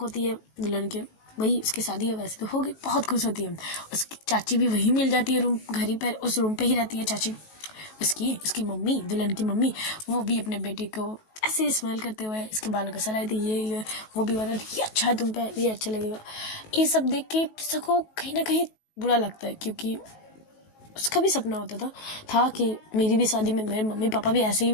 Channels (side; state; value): right; late; 19 ms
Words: है दुल्हन के। वही उसकी शादी है, वैसे तो हो गई, बहुत खुश होती है। उसकी चाची भी वही मिल जाती है, रूम घर ही पर, उस रूम पे ही रहती है चाची। उसकी मम्मी, दुल्हन की मम्मी, वो भी अपने बेटे को ऐसे स्माइल करते हुए इसके बालों को सलाह दी, ये वो भी बता ये अच्छा है तुम पे, ये अच्छा लगेगा। ये सब देख के सबको कहीं ना कहीं बुरा लगता है, क्योंकि उसका भी सपना होता था कि मेरी भी शादी में मेरे मम्मी पापा भी ऐसे ही